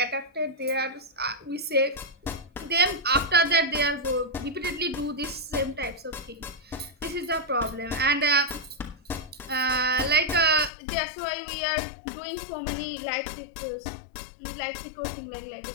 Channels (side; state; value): right; drops out; at 10.7 s